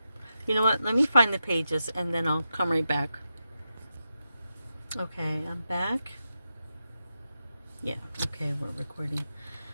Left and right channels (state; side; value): inverted; both; correlation -0.89